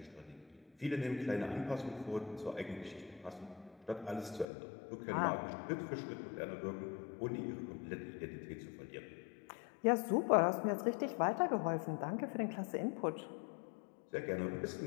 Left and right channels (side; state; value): right; drops out; at 4.5 s